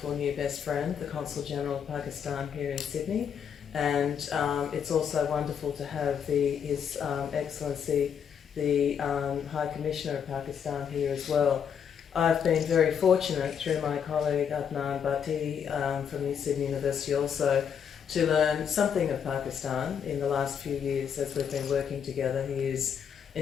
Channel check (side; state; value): right; quieter; 7.7 dB